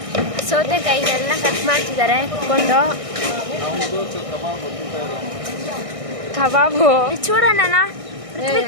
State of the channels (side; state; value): left; late; 1.6 ms